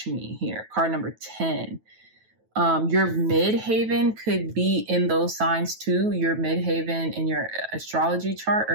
here, card number 10. Your midhaven could be in those signs too. Your midhaven in your astrology chart or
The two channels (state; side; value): late; left; 9.2 ms